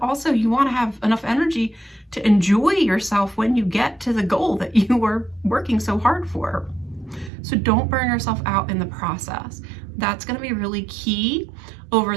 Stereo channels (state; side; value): drops out; left; at 7.3 s